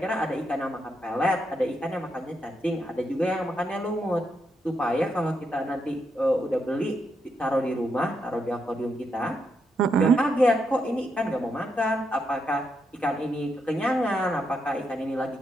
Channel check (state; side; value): normal; both; correlation 0.81